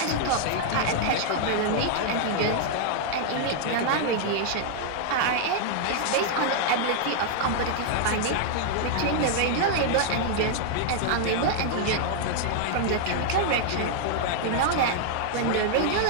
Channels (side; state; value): both; different; correlation -0.01